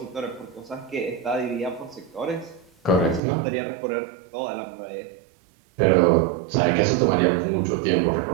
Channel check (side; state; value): left; drops out; at 3.2 s